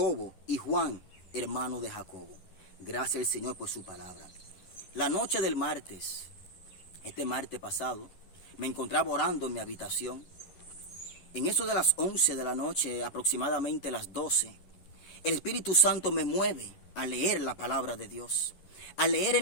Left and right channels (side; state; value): right; late; 11 ms